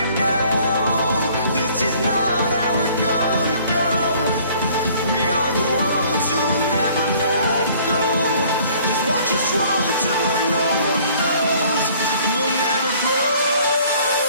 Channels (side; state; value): both; inverted; correlation -0.56